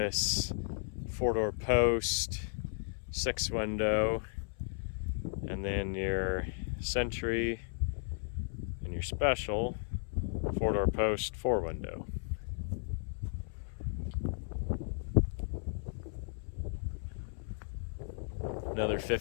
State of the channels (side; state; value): right; silent; 54 dB below the other